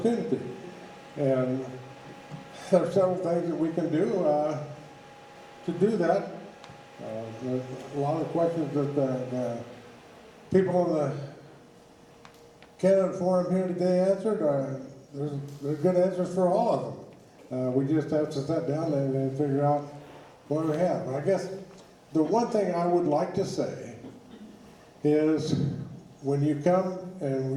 And there are several things that we can do to do that. There's a lot of questions that the people on the candidate forum here today answered. There's good answers for all of them. We just have to sit down and figure out what we have. And I guess the one thing I would like to say is when you come and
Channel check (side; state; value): both; identical; correlation 1.00